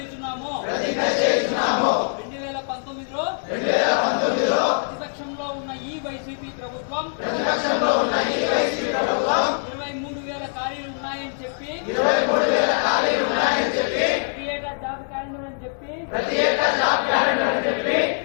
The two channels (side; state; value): right; silent; 63 dB below the other